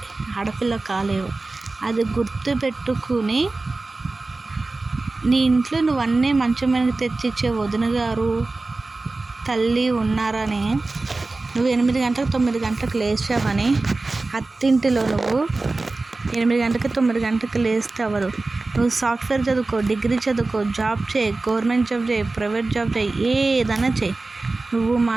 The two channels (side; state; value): left; quieter; 3.4 dB